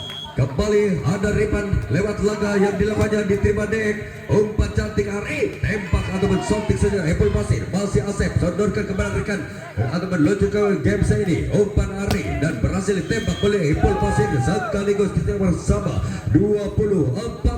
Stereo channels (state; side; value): identical; both; correlation 1.00